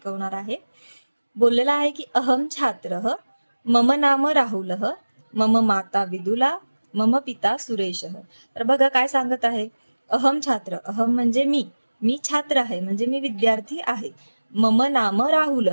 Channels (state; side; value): inverted; both; correlation -1.00